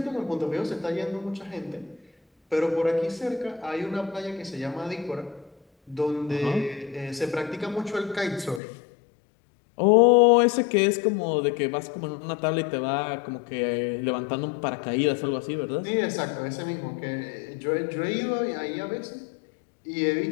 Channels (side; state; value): right; drops out; at 8.6 s